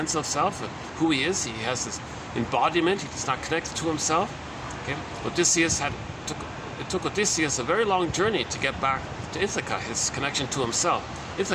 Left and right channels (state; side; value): identical; both; correlation 1.00